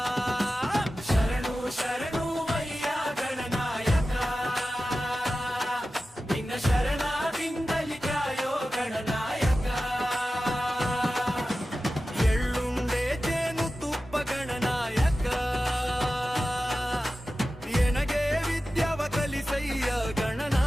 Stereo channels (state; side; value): normal; both; correlation 0.94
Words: ಶರಣು ಶರಣು ವಯ್ಯ ಗಣನಾಯಕ ನಿನ್ನ ಶರಣಾದಿಂದಲಿ ಕಾಯೋ ಗಣನಾಯಕ ಎಳ್ಳುಂಡೆ ಜೇನು ತುಪ್ಪ ಗಣನಾಯಕ ಎನಗೆ ವಿದ್ಯಾವ ಕಲಿಸಯ್ಯ